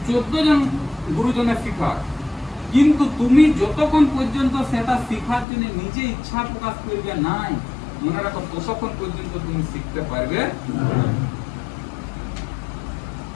14 জন গুরুজনের শিখা, কিন্তু তুমি যতক্ষণ পর্যন্ত সেটা শিখার জন্য নিজে ইচ্ছা প্রকাশ করবে নাই, মনে রাখো ততক্ষণ পর্যন্ত তুমি শিখতে পারবে,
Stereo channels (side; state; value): right; drops out; at 5.5 s